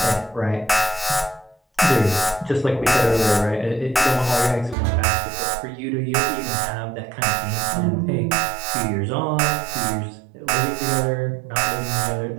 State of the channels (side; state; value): left; drops out; at 4.8 s